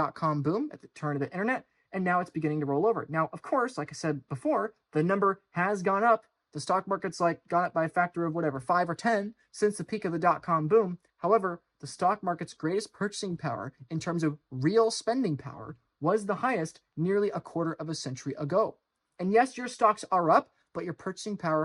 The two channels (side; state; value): both; identical; correlation 1.00